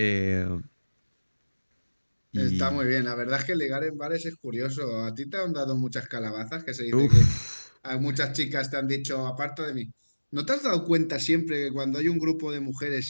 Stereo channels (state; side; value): inverted; both; correlation -1.00